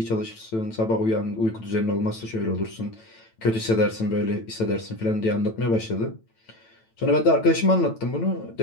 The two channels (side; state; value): right; late; 9.0 ms